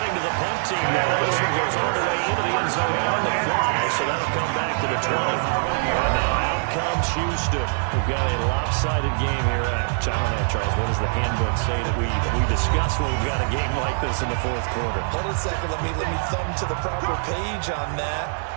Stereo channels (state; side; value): silent; left; 62 dB below the other